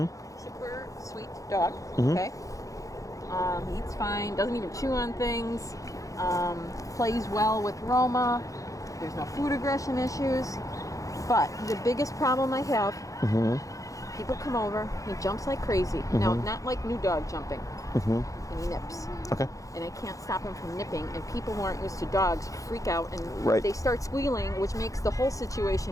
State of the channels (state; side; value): late; right; 0.16 ms